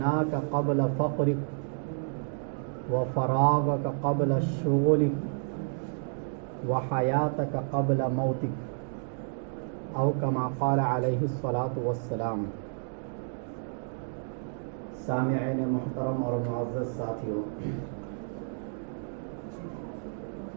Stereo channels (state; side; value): silent; left; digital silence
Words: قبل فقرك وفراغك قبل شغلك وحياتك قبل موتك او كما قال علیہ الصلاۃ والسلام۔ سامعین محترم اور معزز ساتھیوں،